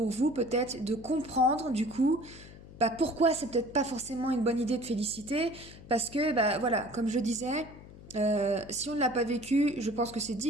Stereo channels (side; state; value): left; noise; hum, 18 dB below the sound